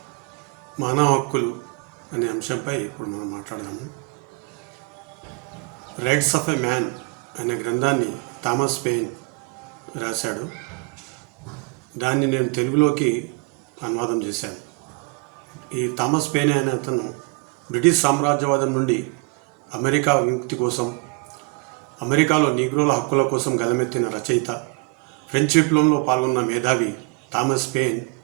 మానవ హక్కులు అనే అంశంపై ఇప్పుడు మనం మాట్లాడదాము. రైట్స్ ఆఫ్ ఎ మ్యాన్ అనే గ్రంథాన్ని థామస్ పెయిన్ రాశాడు. దాన్ని నేను తెలుగులోకి అనువాదం చేశాను. ఈ థామస్ పెయిన్ అనే అతను బ్రిటిష్ సామ్రాజ్యవాదం నుండి అమెరికా విముక్తి కోసం, అమెరికాలో నీగ్రోల హక్కుల కోసం గలమెత్తిన రచయిత, ఫ్రెంచ్ విప్లవంలో పాల్గొన్న మేధావి థామస్ పెయిన్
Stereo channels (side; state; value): left; quieter; 28.9 dB